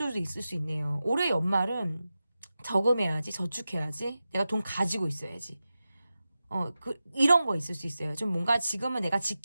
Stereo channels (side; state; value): both; inverted; correlation -0.93